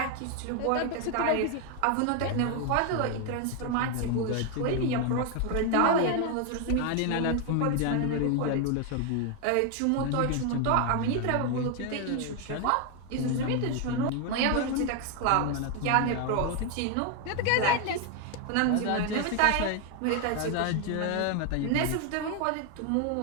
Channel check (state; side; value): different; both; correlation 0.01